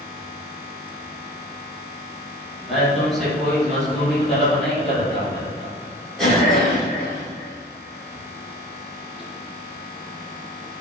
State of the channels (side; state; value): both; normal; correlation 0.39